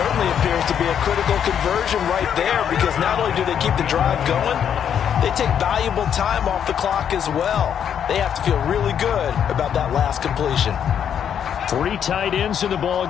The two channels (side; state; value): right; quieter; 8.6 dB